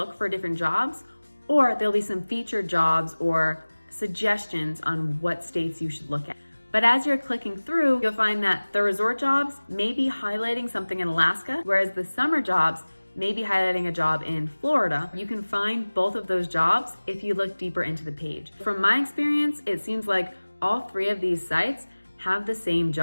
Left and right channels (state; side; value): inverted; both; correlation -1.00